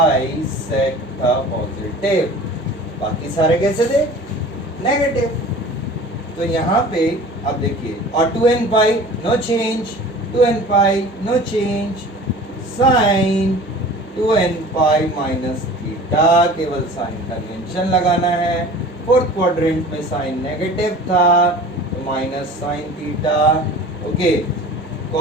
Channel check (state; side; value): normal; both; correlation 0.42